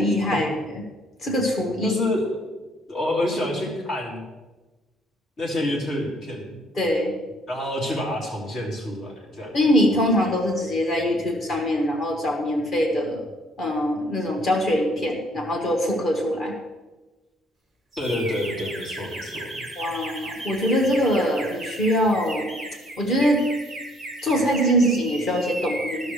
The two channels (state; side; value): normal; both; correlation 0.62